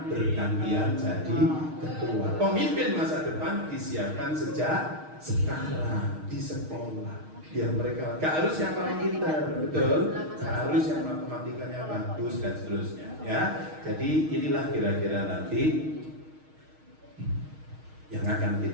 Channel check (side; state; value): left; late; 6.4 ms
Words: bergantian jadi ketua. Pemimpin masa depan disiapkan sejak sekarang di sekolah. Biar mereka gak harus yang paling pintar, betul? Gak harus yang matematikanya bagus dan seterusnya, ya. Jadi inilah kira-kira nanti yang akan